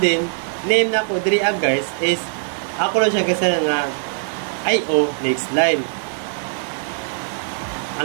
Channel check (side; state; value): left; silent; 57 dB below the other